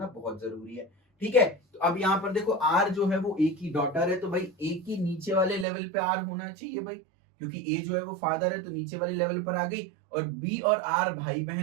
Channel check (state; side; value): drops out; left; at 5.7 s